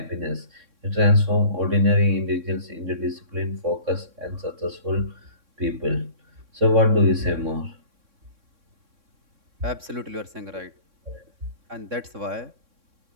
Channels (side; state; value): left; late; 3.6 ms